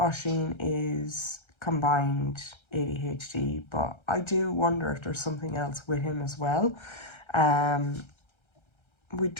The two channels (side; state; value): right; late; 1.3 ms